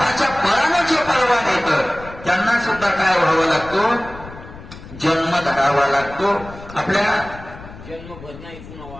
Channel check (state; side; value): noise; left; rumble, 16 dB below the sound